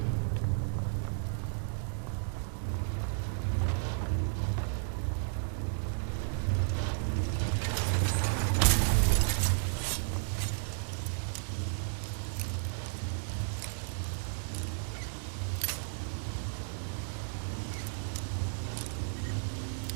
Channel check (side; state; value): left; silent; digital silence